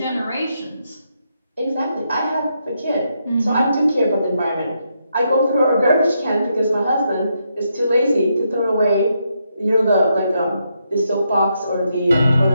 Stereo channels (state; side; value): inverted; both; correlation -0.80